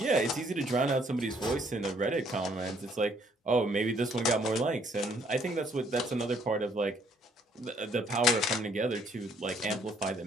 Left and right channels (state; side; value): normal; both; correlation 0.65